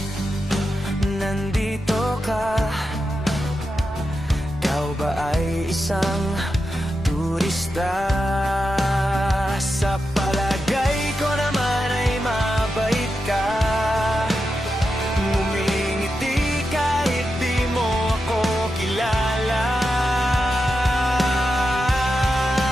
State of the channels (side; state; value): both; normal; correlation 0.88